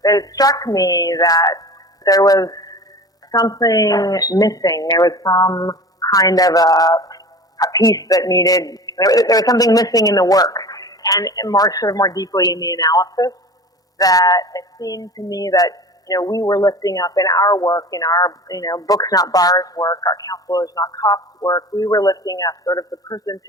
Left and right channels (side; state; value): both; normal; correlation 0.37